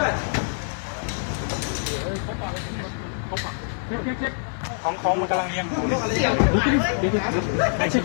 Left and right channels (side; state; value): right; silent; digital silence